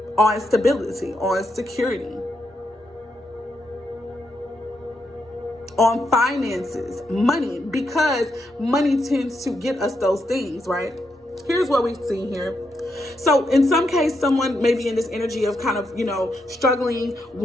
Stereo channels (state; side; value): normal; both; correlation 0.81